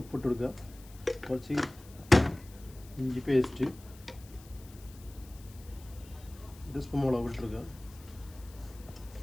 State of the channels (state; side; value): noise; left; hiss, 22 dB below the sound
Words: ഉപ്പിട്ട് കൊടുക്കുക, കുറച്ച് ഇഞ്ചി പേസ്റ്റ്, 1 സ്പൂൺ മുളക് ഇട്ടെടുക്കുക,